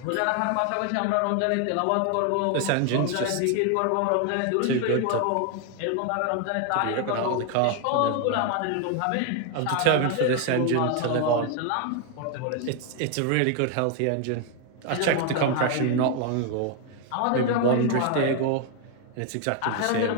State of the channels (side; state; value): both; different; correlation 0.01